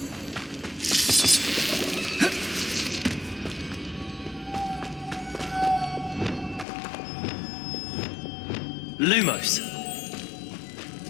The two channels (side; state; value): right; drops out; at 6.7 s